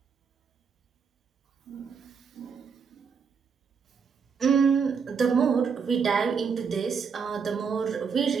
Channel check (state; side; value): quieter; left; 6.0 dB